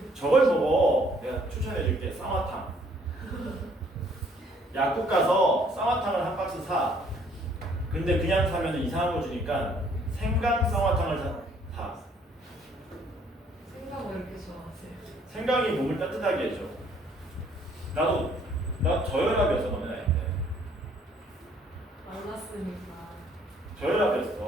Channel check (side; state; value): both; normal; correlation 0.63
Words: 저걸 보고 내가 추천해줄게. 쌍화탕. 약국 가서 쌍화탕을 한 박스 사. 근데 그냥 사면 이상한 거 주니까 생강 쌍화탕을 사. 생각 왜 이렇게 좋아하세요? 생강이 몸을 따뜻하게 해줘. 나 저혈압이었어. 너네 나이 때. 만났으니까.